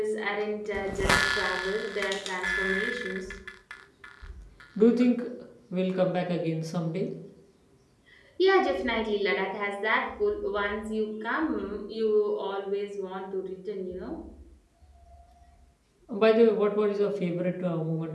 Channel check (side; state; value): both; identical; correlation 1.00